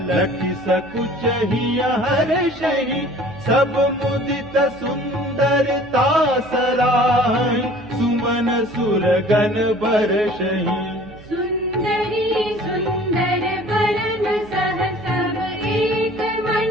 लखि सकुचहि हर्षहि, सब मुदित सुंदरता सराहि, सुमन सुरगन बरषहि। सुंदरी सुंदर वरन सह सब एक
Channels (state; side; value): noise; right; hum, 21 dB below the sound